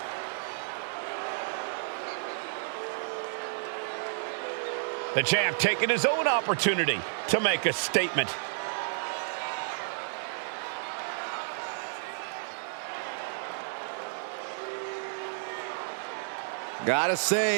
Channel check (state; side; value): silent; left; digital silence